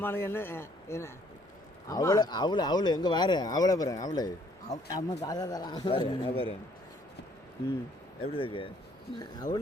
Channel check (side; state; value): both; normal; correlation 0.63